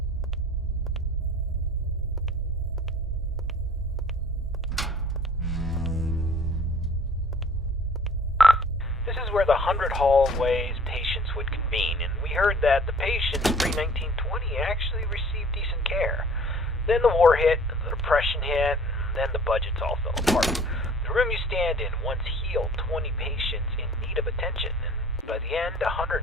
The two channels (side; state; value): both; normal; correlation 0.51